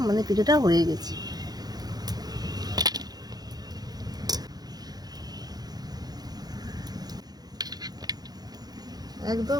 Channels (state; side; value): late; left; 0.19 ms